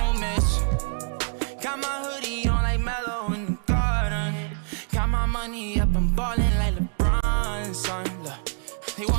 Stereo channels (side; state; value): left; silent; 59 dB below the other